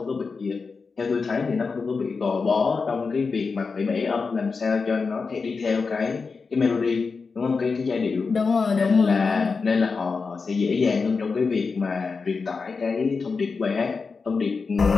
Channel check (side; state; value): right; quieter; 4.7 dB